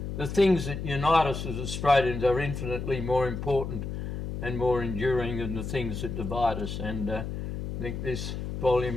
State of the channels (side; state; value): left; noise; hum, 5 dB below the sound